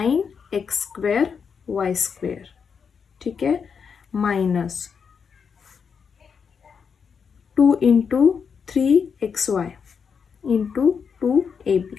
स्क्वेअर y स्क्वेअर. ठीक आहे, minus 2 into 3xy into 2ab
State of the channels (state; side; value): quieter; right; 6.3 dB